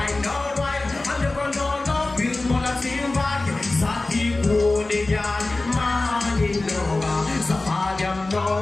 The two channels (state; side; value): quieter; right; 3.1 dB